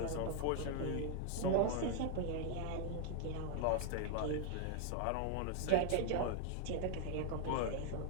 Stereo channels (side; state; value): both; different; correlation 0.00